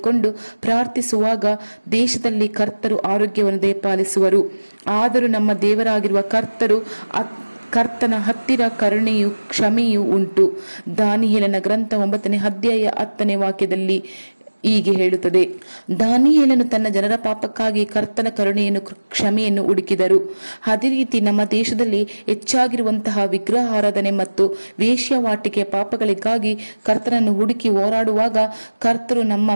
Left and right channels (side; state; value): both; inverted; correlation -1.00